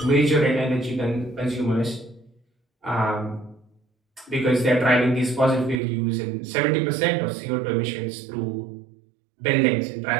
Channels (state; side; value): drops out; left; at 5.8 s